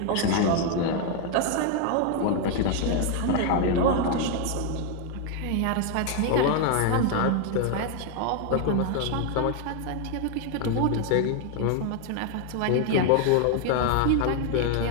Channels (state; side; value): different; both; correlation 0.00